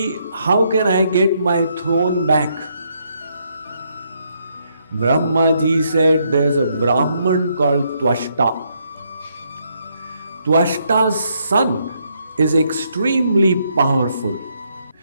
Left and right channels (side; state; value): both; inverted; correlation -0.75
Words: how can I get my throne back? Brahmaji said, there's a Brahman called Twashta. Twashta's son is extremely powerful.